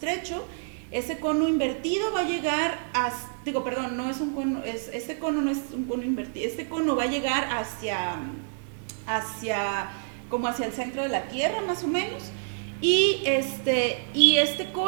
Ese cono invertido va a llegar no es un cono, este cono no es un cono invertido, este cono va a llegar como hacia el centro de la Tierra, más o menos, y este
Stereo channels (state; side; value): silent; left; digital silence